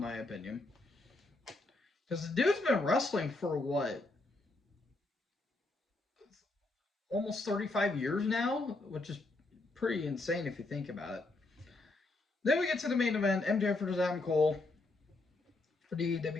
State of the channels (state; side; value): quieter; right; 3.0 dB